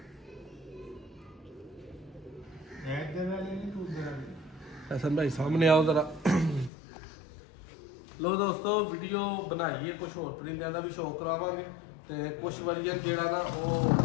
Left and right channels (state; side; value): drops out; right; at 6.7 s